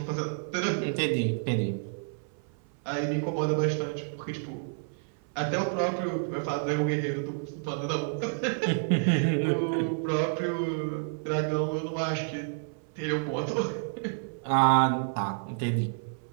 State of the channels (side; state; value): left; silent; 58 dB below the other